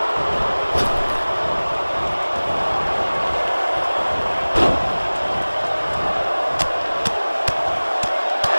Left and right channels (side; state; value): both; inverted; correlation -1.00